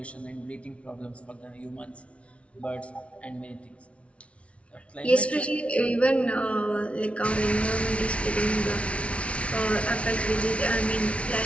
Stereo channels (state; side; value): late; right; 0.062 ms